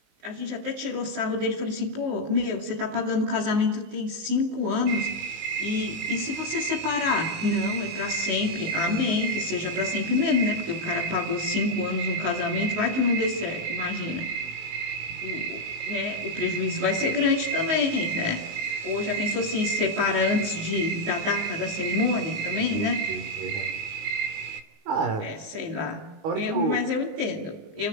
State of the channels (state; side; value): late; left; 19 ms